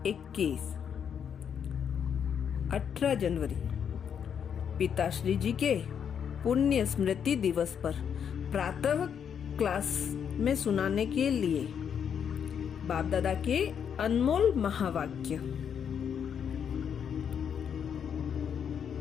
18 जनवरी पिताश्री जी के पुण्य स्मृति दिवस पर प्रातः क्लास में सुनाने के लिए बाप दादा के अनमोल महावाक्य।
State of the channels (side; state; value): right; quieter; 7.8 dB